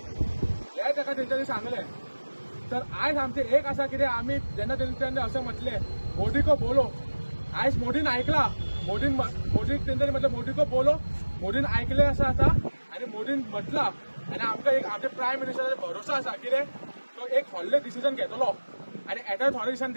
हे ताका तेंच्यांनी सांगलें। तर आयज आमचे एक आसा कितें आमी जेन्ना तेंच्यांनी अशें म्हटलें मोदी को बोलो आयज मोदीन आयकला मोदीक तेंच्यांनी म्हटलें मोदी को बोलो मोदीन आयकलें आसा आनी मोदीन म्हटलां आनी आमकां एक आमच्या प्रायम मिनिस्टराचेर भरोसा आसा कितें तो एक व्हडलें डिसिजन घेतलो आनी येत्या थोड्या दिसांनी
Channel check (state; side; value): inverted; both; correlation -1.00